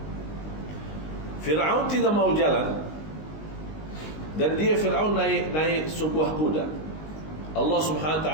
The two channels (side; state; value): right; late; 19 ms